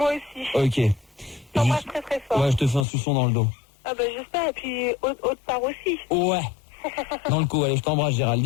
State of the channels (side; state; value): right; drops out; at 2.9 s